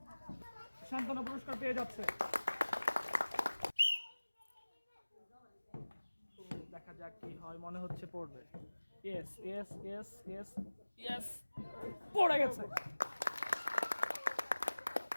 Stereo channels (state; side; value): inverted; both; correlation -1.00